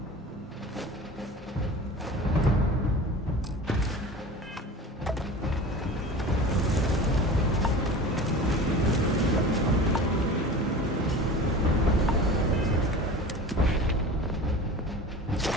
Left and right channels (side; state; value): both; normal; correlation 0.36